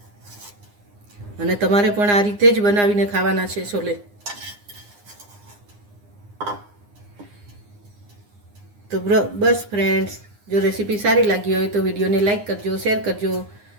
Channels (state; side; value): late; left; 9.8 ms